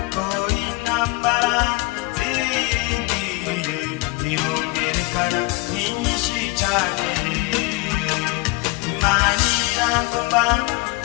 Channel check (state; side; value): quieter; right; 23.0 dB